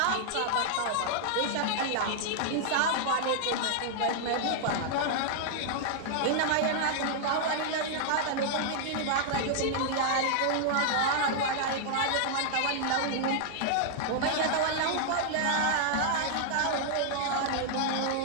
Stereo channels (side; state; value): both; different; correlation -0.01